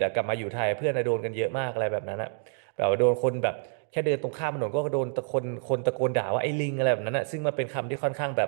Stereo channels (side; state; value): left; silent; 59 dB below the other